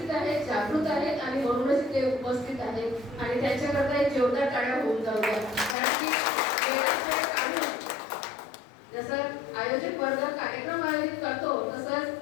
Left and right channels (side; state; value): right; drops out; at 5.8 s